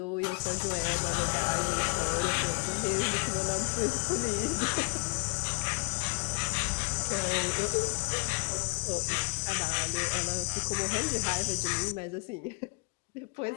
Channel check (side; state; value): right; quieter; 32.9 dB